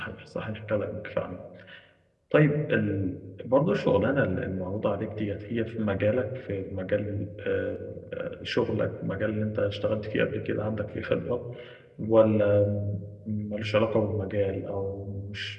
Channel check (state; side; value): identical; both; correlation 1.00